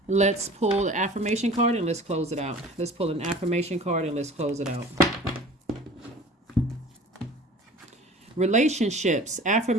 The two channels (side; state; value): both; normal; correlation 0.43